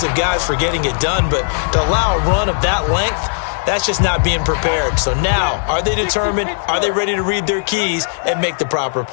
guys for getting it done, but to allow a run of that length, that's just not being prepared. So now, are they determined? Are they ready to read their keys and make the proper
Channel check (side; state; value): right; silent; digital silence